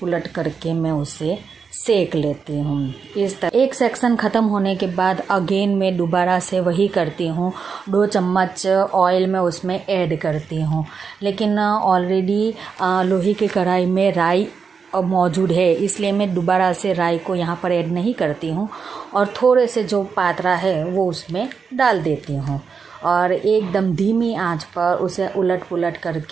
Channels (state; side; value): quieter; left; 5.7 dB